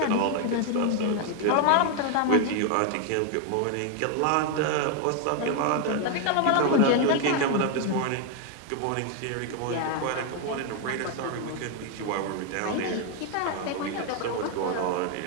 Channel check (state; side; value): different; both; correlation 0.01